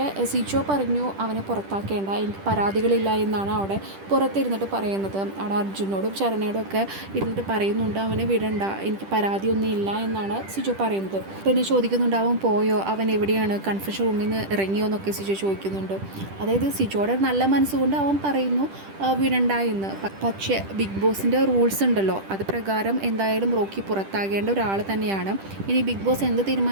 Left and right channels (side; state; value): left; late; 10 ms